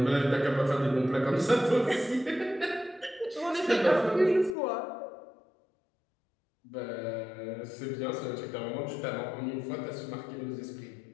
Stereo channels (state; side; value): drops out; right; at 4.5 s